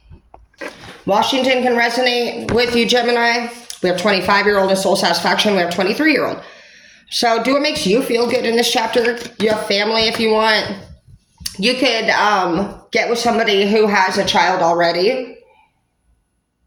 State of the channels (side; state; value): both; identical; correlation 1.00